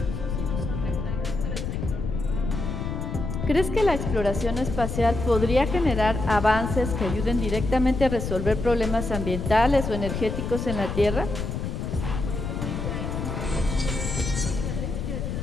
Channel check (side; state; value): left; noise; rumble, 4 dB below the sound